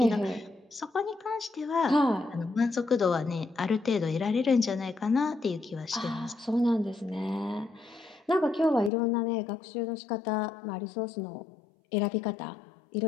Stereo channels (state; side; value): drops out; right; at 8.9 s